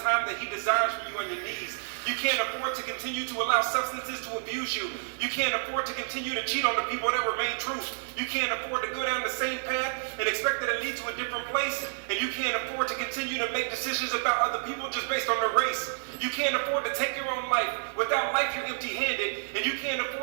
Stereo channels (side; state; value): left; silent; 58 dB below the other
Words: time that he desires for you on your knees. You can't afford to continue to allow substances to abuse you. You can't afford to continue to cheat on the people that remain true. You can't afford to go down the same path and expect that it leads to a different place. And you can't afford to continue to make decisions about other people just based on their race. You can't afford to take your own life. Without life, you're empty-handed. And you can't